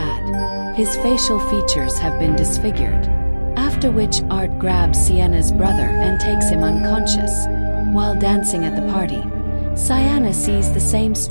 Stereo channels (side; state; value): both; inverted; correlation -1.00